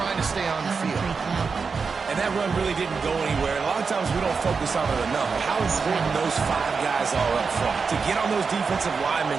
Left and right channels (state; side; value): quieter; left; 5.1 dB